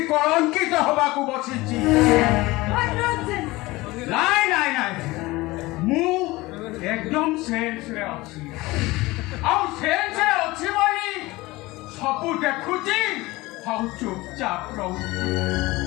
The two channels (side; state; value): right; quieter; 20.6 dB